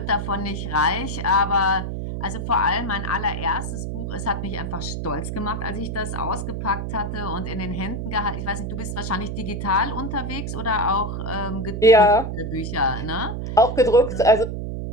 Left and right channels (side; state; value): right; noise; hum, 4 dB below the sound